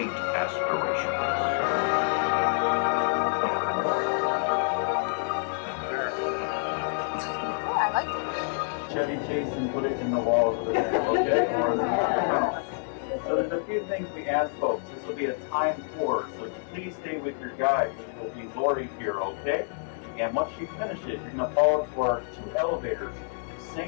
aspirations. I like it. Chevy Chase and put it in the walls of the okay? Or in the house. So there's a few things we ask folks. This will be a timed tour, so please stay with your guide, which will be Lori here, okay? And once she finishes, you're going to follow to our 2 elevators.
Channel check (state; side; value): silent; right; digital silence